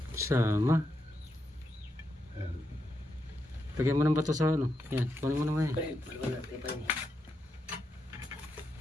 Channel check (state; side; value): normal; both; correlation 0.84